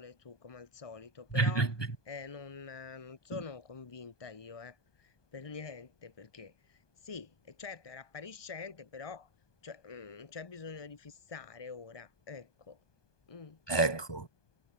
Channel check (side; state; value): right; late; 1.2 ms